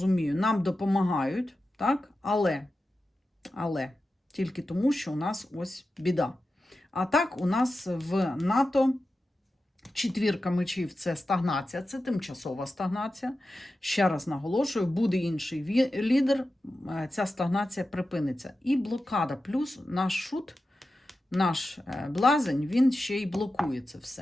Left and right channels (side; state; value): both; normal; correlation 0.92